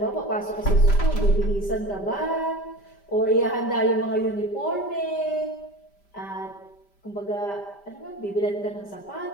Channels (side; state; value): right; late; 5.1 ms